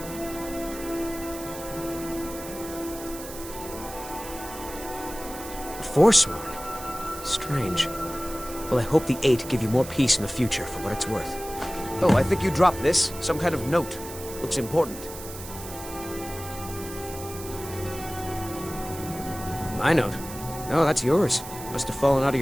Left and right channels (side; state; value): right; noise; hiss, 13 dB below the sound